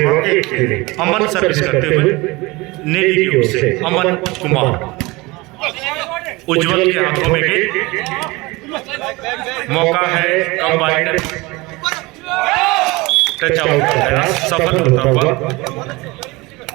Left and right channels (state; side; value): quieter; left; 23.1 dB